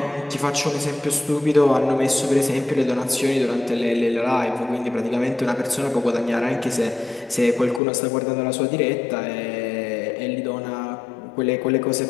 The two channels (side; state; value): right; drops out; at 7.8 s